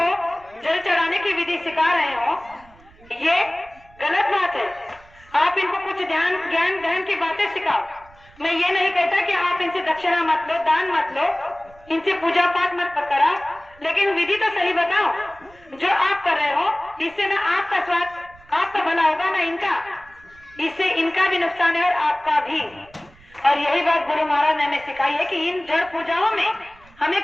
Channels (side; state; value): right; noise; rumble, 26 dB below the sound